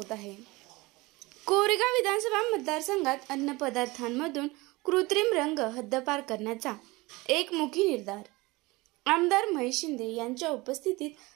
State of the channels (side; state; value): left; quieter; 22.5 dB